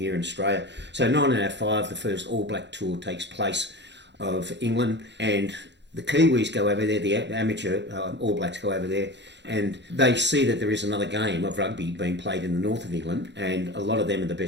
in Australia. So 1905, the first All Black tour takes place of England, and The Kiwis go over there, the amateur All Blacks go over there, and they see that there is another game of rugby being played in the north of England, and a lot of them are the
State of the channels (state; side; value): late; left; 0.51 ms